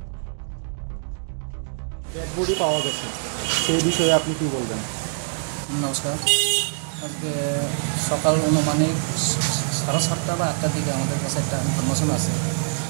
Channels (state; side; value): silent; left; digital silence